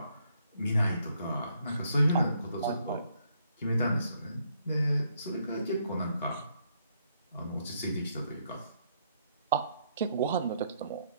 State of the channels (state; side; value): inverted; both; correlation -0.72